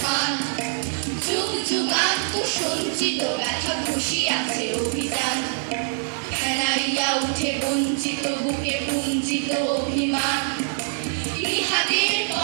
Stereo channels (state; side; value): silent; left; 60 dB below the other